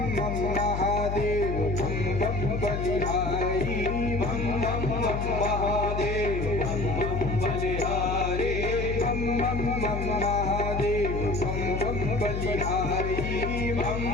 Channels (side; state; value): left; noise; hum, 3 dB below the sound